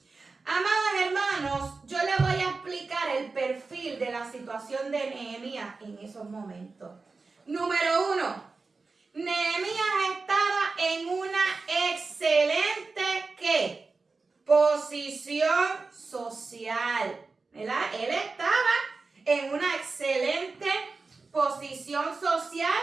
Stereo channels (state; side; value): quieter; left; 4.0 dB